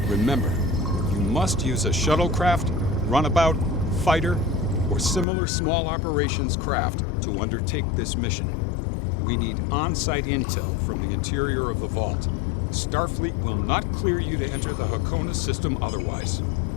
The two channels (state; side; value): drops out; right; at 5.2 s